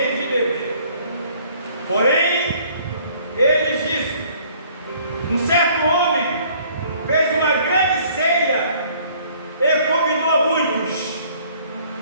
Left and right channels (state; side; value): inverted; both; correlation -0.58